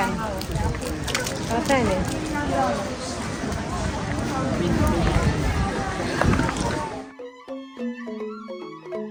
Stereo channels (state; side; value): identical; both; correlation 1.00